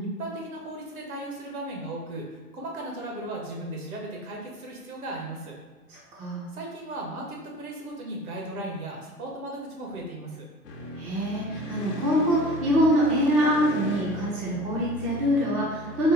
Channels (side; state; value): both; normal; correlation 0.41